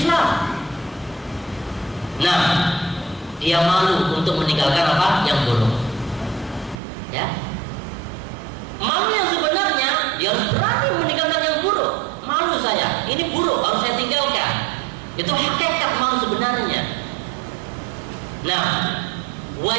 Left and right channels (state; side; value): drops out; left; at 6.8 s